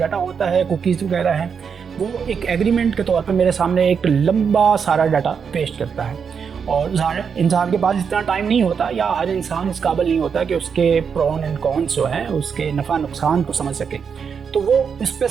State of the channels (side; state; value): left; quieter; 6.5 dB